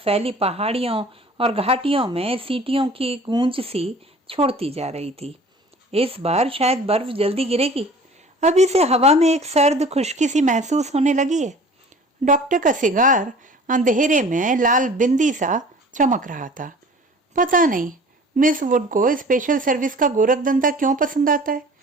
पहाड़ियों और घाटियों में सीटियों की गूंज सी छोड़ती जा रही थी। इस बार शायद बर्फ जल्दी गिरेगी। अभी से हवा में एक सर्द खुश्की सी महसूस होने लगी है। डॉक्टर का सिगार अंधेरे में लाल बिंदी सा चमक रहा था। पता नहीं मिस वुड को स्पेशल सर्विस का गोरखधंधा क्यों पसंद आता है।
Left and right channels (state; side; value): normal; both; correlation 0.46